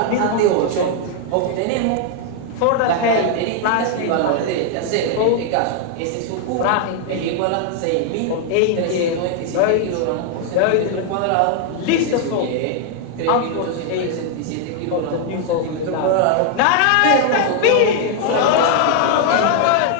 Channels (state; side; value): different; both; correlation 0.00